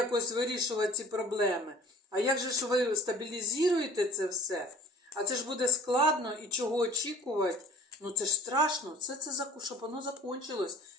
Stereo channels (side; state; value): both; normal; correlation 0.48